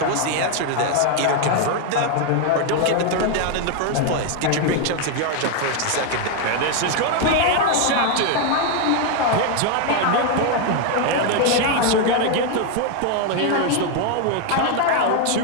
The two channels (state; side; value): different; both; correlation 0.01